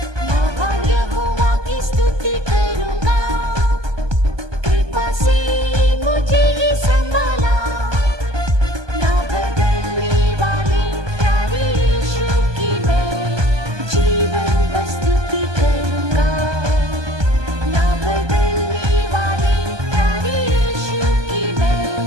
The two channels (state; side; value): late; left; 1.2 ms